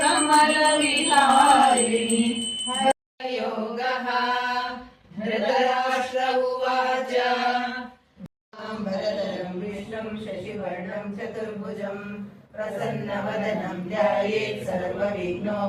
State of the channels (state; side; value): identical; both; correlation 1.00